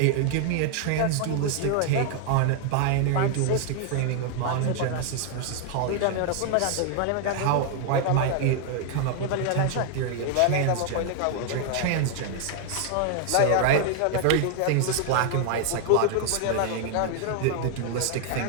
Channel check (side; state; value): both; different; correlation 0.00